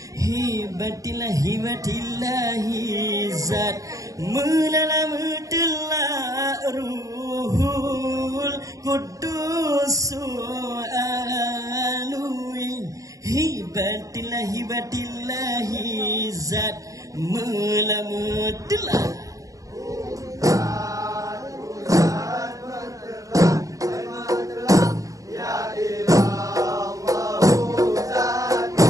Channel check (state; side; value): late; left; 0.16 ms